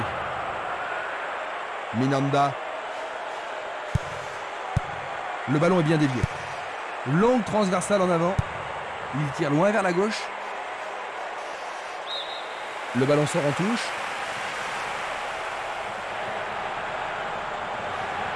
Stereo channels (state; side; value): identical; both; correlation 1.00